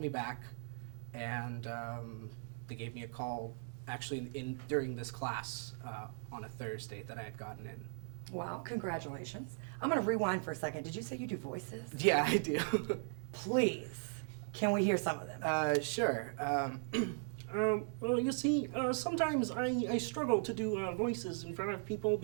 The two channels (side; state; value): left; silent; digital silence